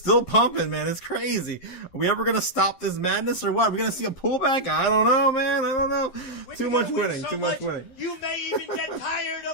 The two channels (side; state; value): right; late; 11 ms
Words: pumping, man. It's crazy. Are we ever going to stop this madness or what? Are we going to see a pullback? I don't know, man. I don't know. Too much winning. Too much winning. You may even get tired